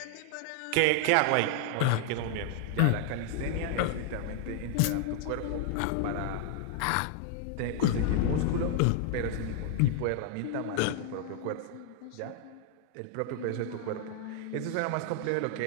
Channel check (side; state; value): both; different; correlation 0.00